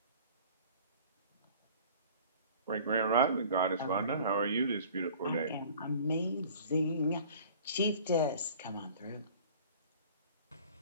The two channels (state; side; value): inverted; both; correlation -0.48